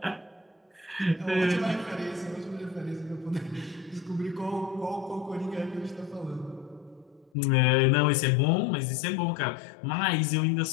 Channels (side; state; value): right; drops out; at 7.3 s